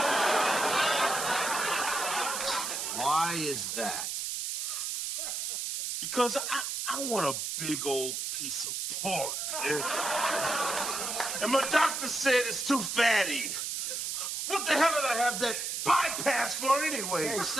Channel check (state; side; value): noise; right; hiss, 3 dB below the sound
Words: Why is that? Because I want a big old piece of pork. And my doctor said it's too fatty. What the hell did I have that bypass for anyway? Hey,